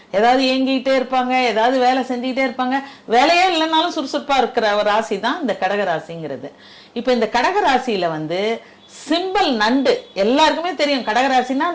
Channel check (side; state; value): both; identical; correlation 1.00